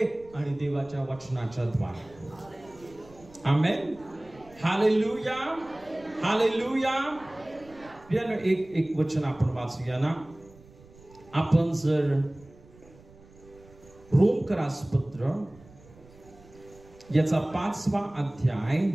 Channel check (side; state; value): right; noise; rumble, 24 dB below the sound